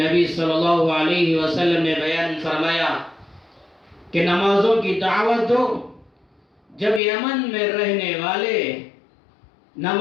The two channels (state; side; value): drops out; right; at 7.0 s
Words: صلی اللہ علیہ وسلم نے بیان فرمایا کہ نمازوں کی دعوت دو۔ جب یمن میں رہنے والے